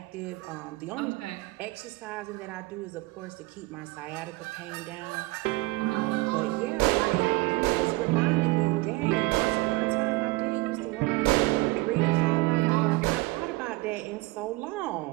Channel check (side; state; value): left; quieter; 22.1 dB